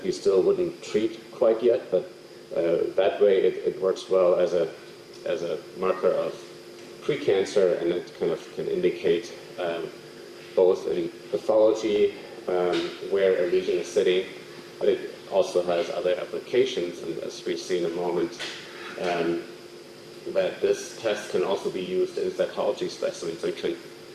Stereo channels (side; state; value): both; identical; correlation 1.00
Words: we still wouldn't treat quite yet, but that way it works well as a marker of precancer, and it kind of can indicate both in pathology where a lesion is sitting, but it also has other applications, and as we see in a moment, that this test can also be used in cytology specimens, so it can